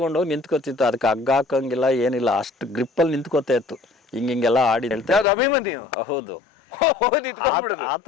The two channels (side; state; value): right; drops out; at 5.2 s